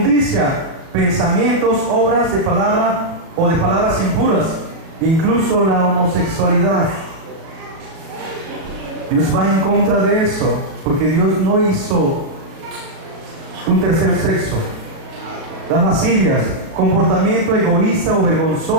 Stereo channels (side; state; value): left; late; 37 ms